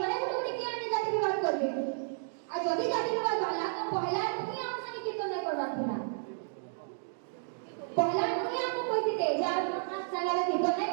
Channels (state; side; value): silent; left; digital silence